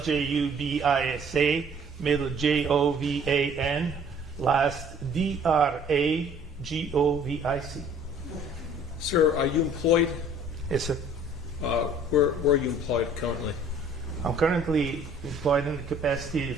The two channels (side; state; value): both; normal; correlation 0.54